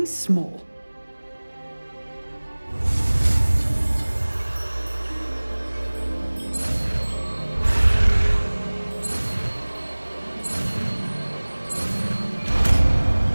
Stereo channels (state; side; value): inverted; both; correlation -1.00